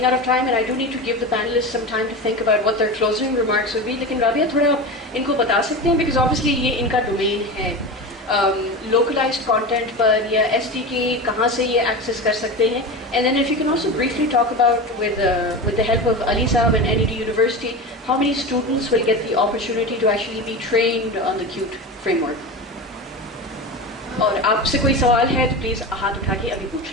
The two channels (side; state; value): both; normal; correlation 0.26